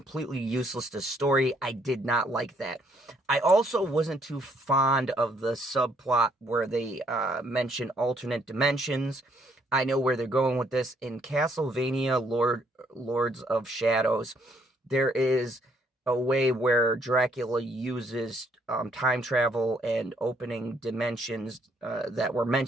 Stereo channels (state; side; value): normal; both; correlation 0.69